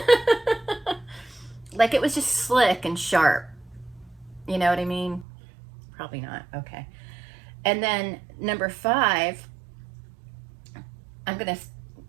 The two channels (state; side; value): drops out; left; at 5.2 s